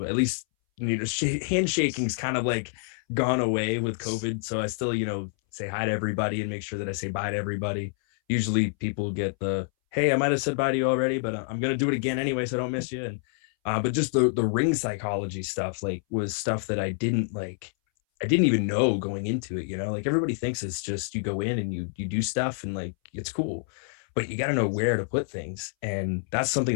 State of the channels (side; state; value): right; silent; 60 dB below the other